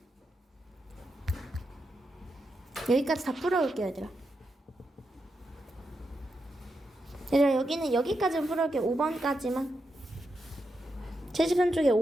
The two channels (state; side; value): normal; both; correlation 0.85